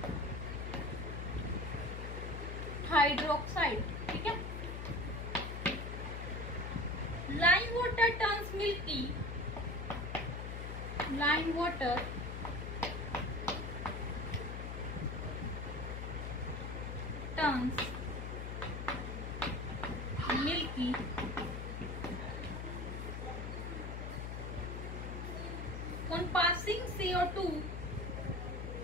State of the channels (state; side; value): noise; left; hum, 5 dB below the sound